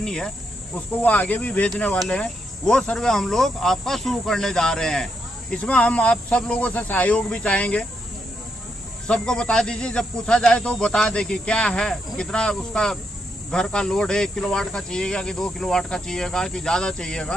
है, उसको वो आगे भी भेजने वाले हैं। वो सर्वे हम लोग आपका शुरू करने जा रहे हैं। इसमें हम आप सब लोगों से सहयोग भी चाहेंगे। सबको बता दीजिए, जब पूछा जाए तो बता दे कि क्या है, कितना उसका घर का लोड है, 1 किलोवाट का चाहिएगा कि 2 किलोवाट का चाहिएगा कि ज्यादा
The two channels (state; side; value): normal; both; correlation 0.80